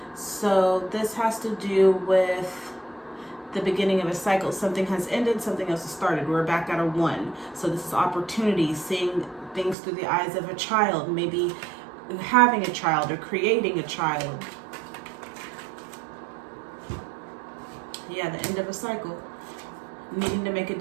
So this has to do with the beginning of a cycle. Something has ended, something else has started. We're back at a 1. So this is opportunity, seeing things through the eyes of a child, maybe having a child or creating a child. Yeah, the end of a cycle. Needing to make a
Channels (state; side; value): drops out; left; at 9.8 s